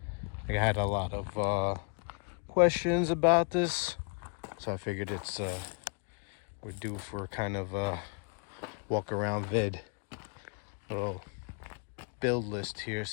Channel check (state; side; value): quieter; right; 39.8 dB